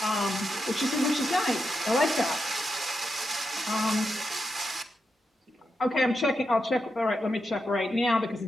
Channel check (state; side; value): normal; both; correlation 0.86